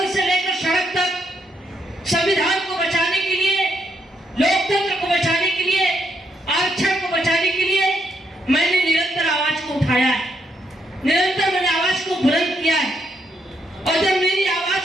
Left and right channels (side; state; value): both; normal; correlation 0.77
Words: से लेकर सड़क तक संविधान को बचाने के लिए, लोकतंत्र को बचाने के लिए, आरक्षण को बचाने के लिए मैंने निरंतर आवाज को उठाया है। निरंतर मैंने आवाज को बुलंद किया है। और जब मेरी